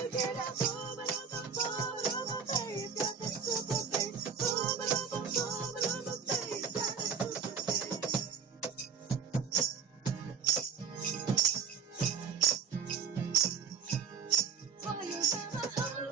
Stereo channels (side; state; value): left; quieter; 6.2 dB